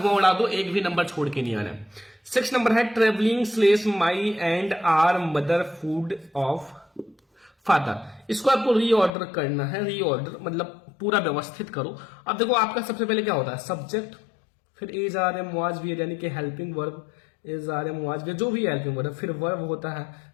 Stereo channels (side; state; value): right; drops out; at 9.1 s